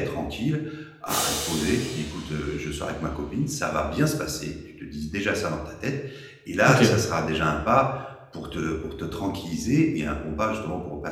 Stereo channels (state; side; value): identical; both; correlation 1.00